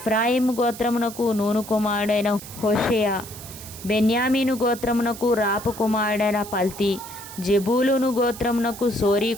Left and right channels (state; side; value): noise; right; hiss, 14 dB below the sound